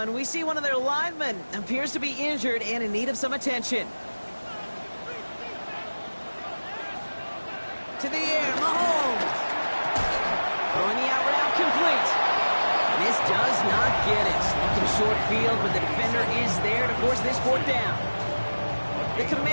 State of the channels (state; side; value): inverted; both; correlation -1.00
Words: we see one of their linemen appears to be injured and in need of some attention. To the air, Mahomes. Throwing the out route complete. And this does not get it. Looking short field, but the defender is there to force this fourth down. The